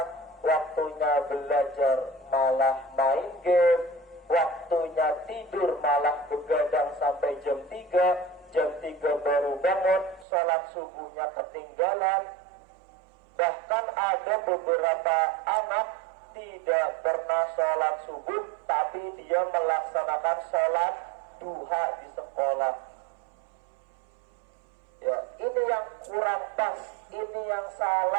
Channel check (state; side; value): drops out; left; at 10.2 s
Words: waktunya belajar malah main game, waktunya tidur malah begadang sampai jam 3 baru bangun, sholat subuhnya ketinggalan. Bahkan ada beberapa anak tidak pernah sholat subuh, tapi dia melaksanakan sholat duha di sekolah. Ya, ini yang kurang pas, ini yang